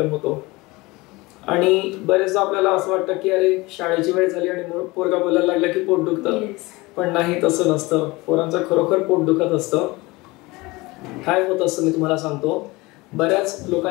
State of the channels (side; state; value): right; quieter; 22.5 dB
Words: होतो. आणि बरेचदा आपल्याला असं वाटतं की अरे शाळेची वेळ झाली आणि पोरगा बोलायला लागला की पोट दुखतं. पण नाही, तसं नसतं. पोरांचं खरोखर पोट दुखत असतं. काय होत असतं मी तुम्हाला सांगतो. बऱ्याच